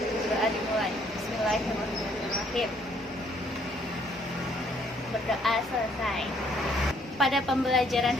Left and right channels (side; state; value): both; normal; correlation 0.65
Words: Doa dimulai. Bismillahirrahmanirrahim. Berdoa selesai. Pada pembelajaran